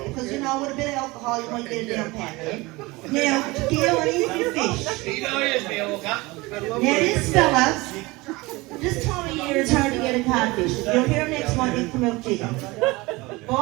Because, you know, with a bit of alcohol, you might get a damn pack. Now, Gail, and eat your fish. Now, this fella, this time of year it's hard to get a codfish. If you're here next month, you come out chicken.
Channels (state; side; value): quieter; left; 22.5 dB